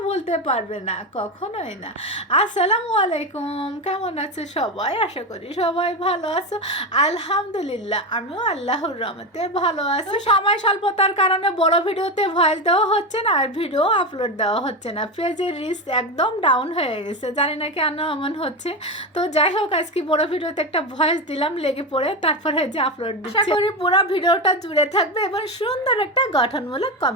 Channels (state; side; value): normal; both; correlation 0.16